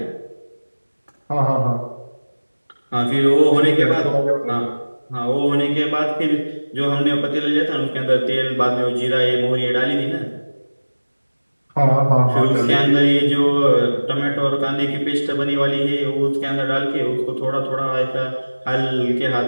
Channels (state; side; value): inverted; both; correlation -1.00